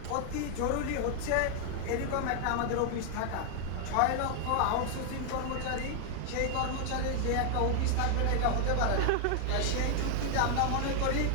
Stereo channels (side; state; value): both; different; correlation 0.00